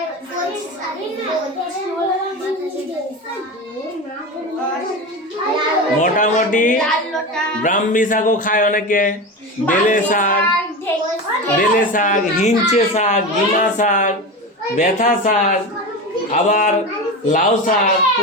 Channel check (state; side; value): normal; both; correlation 0.24